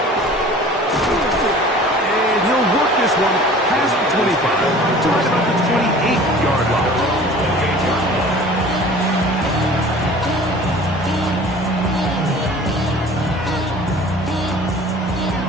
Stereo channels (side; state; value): both; normal; correlation 0.45